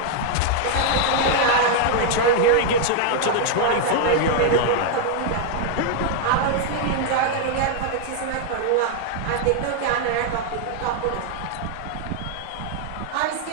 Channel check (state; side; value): different; both; correlation 0.00